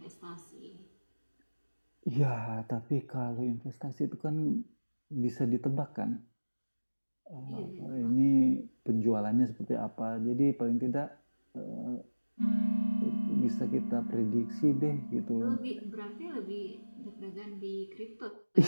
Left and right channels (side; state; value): both; inverted; correlation -1.00